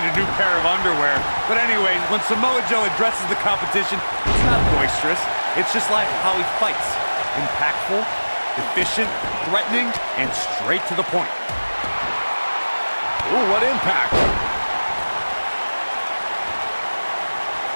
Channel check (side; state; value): both; inverted; correlation -1.00